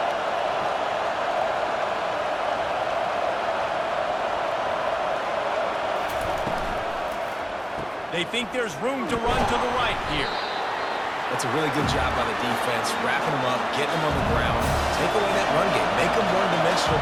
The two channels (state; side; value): identical; both; correlation 1.00